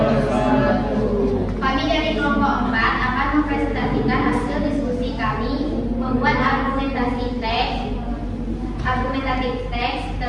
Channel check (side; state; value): both; identical; correlation 1.00